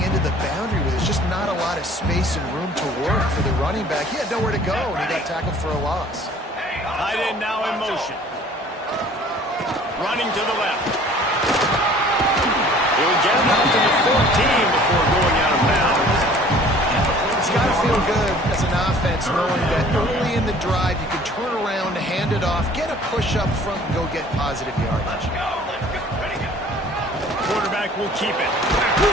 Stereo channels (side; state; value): both; normal; correlation 0.51